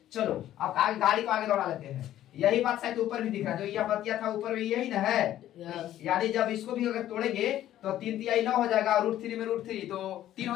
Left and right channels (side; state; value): right; quieter; 12.6 dB